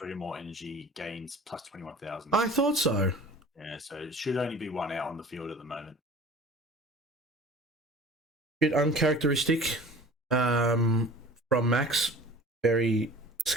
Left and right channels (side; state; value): both; normal; correlation 0.43